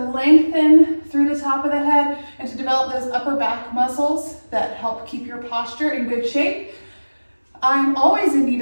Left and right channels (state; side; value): inverted; both; correlation -1.00